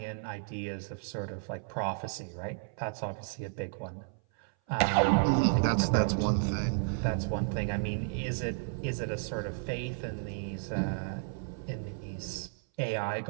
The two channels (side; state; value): left; silent; 56 dB below the other